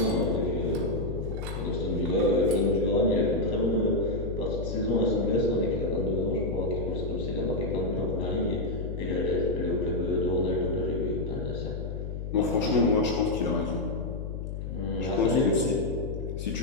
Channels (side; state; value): left; noise; hum, 6 dB below the sound